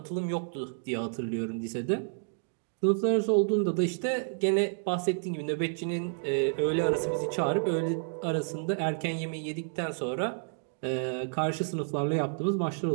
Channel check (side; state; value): left; silent; digital silence